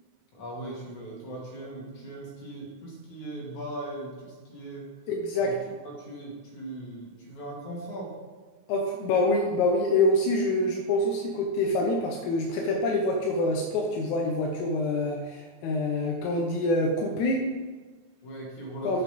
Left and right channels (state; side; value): late; right; 9.5 ms